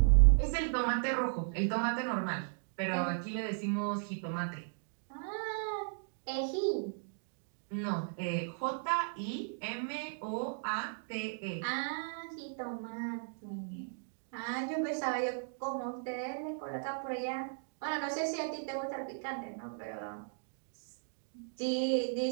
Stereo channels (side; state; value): left; silent; digital silence